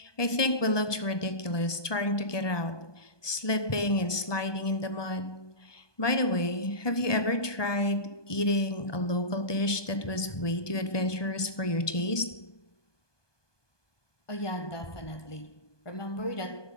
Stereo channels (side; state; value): right; late; 1.2 ms